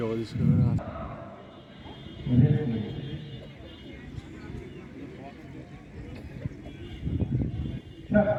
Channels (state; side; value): identical; both; correlation 1.00